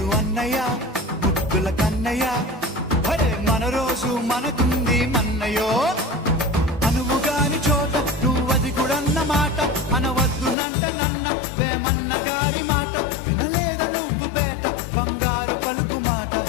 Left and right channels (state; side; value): drops out; right; at 10.6 s